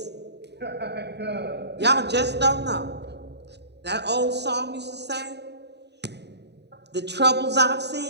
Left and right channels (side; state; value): left; late; 0.49 ms